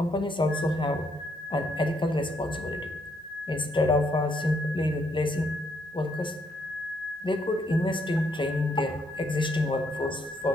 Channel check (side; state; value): both; normal; correlation 0.73